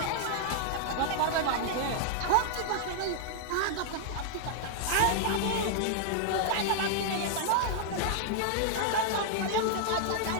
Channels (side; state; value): both; different; correlation -0.01